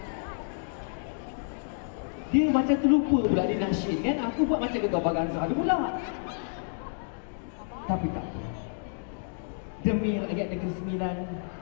Dia macam terlupa pula dia nasyid kan. Aku buat macam Gegar Baganza pula. Tapi tak apa. Demi rakyat Negeri Sembilan,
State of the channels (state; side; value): silent; right; digital silence